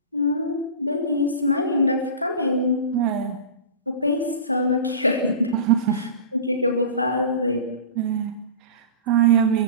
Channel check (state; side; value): inverted; both; correlation -0.33